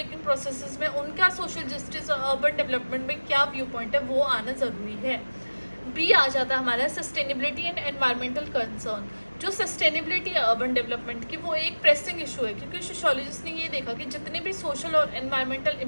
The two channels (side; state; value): both; inverted; correlation -1.00